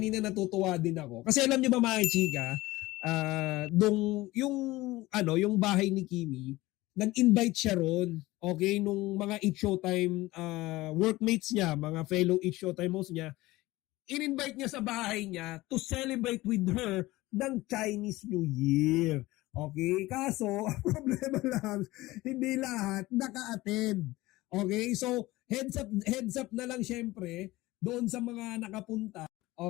natutuwa din ako. Kasi alam nyo ba mga chika, yung bahay ni Kimi, nag-invite siya ron, okay, nung mga Eat Showtime workmates niya, mga fellow Eat Showtime hosts niya, in-invite niya sa bahay niya to celebrate with her ng Chinese New Year. Okay? Kaso, ang problema lang, hindi lahat naka-attend. Okay? So, heads up na lang syempre, doon sa mga nakapunta.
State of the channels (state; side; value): quieter; right; 19.0 dB